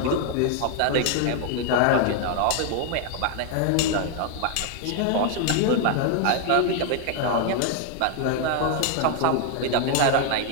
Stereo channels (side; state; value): both; different; correlation 0.00